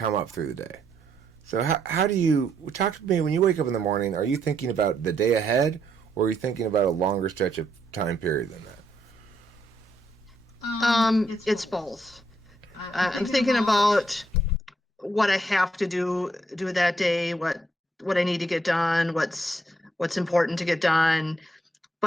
up through the day. So how do you talk to me when you wake up in the morning? Are you thinking about the day ahead, or are you thinking about a longer stretch of time period than that? It's both. I'm thinking about what I have to do that day, what I need to get done, what's important to get done.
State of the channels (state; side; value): normal; both; correlation 0.74